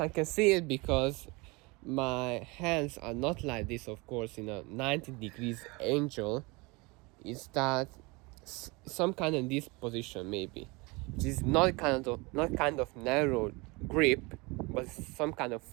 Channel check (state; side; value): quieter; left; 26.0 dB